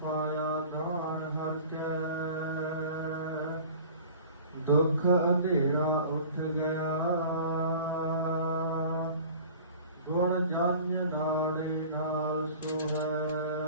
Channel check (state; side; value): inverted; both; correlation -0.44